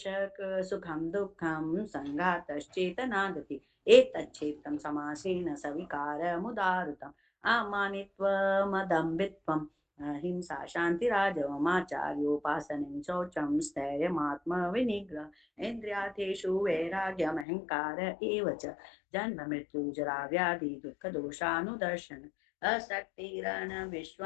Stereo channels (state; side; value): drops out; right; at 17.4 s